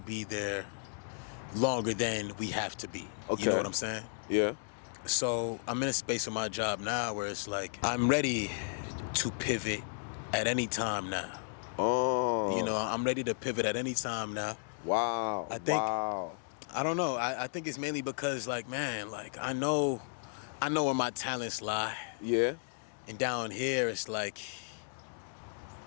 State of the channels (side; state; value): right; silent; digital silence